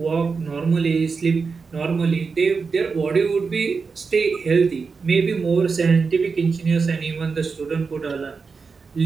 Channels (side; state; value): left; quieter; 4.9 dB